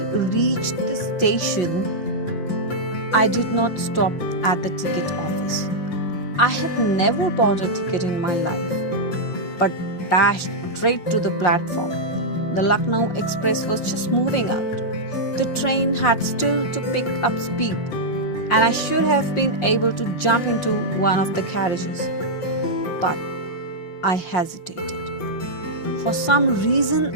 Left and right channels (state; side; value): late; right; 5.6 ms